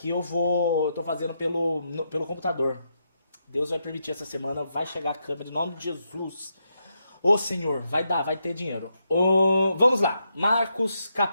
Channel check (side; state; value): both; inverted; correlation -0.82